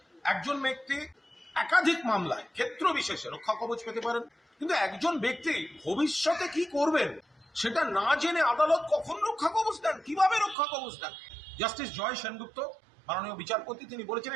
একজন ব্যক্তি একাধিক মামলায় ক্ষেত্র বিশেষে রক্ষা কবচ পেতে পারেন, কিন্তু একজন ব্যক্তি ভবিষ্যতে কি করবেন সেটা না জেনে আদালত কখন রক্ষা কবচ দেন, কিভাবে রক্ষা কবচ দেন? জাস্টিস জয় সেনগুপ্ত মাননীয় বিচারপতি তিনি বলেছেন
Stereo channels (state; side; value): drops out; left; at 10.6 s